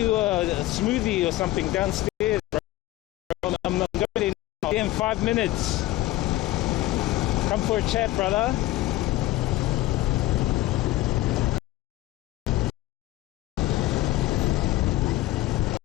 a smoothie or something downstairs, bro. I'm going in 5 minutes. Come for a chat, brother.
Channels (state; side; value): quieter; right; 16.8 dB